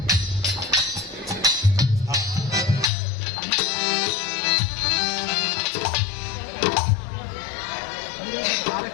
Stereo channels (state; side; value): drops out; right; at 2.9 s